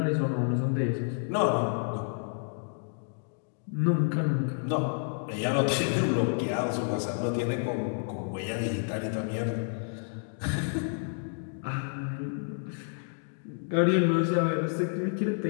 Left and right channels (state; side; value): silent; right; digital silence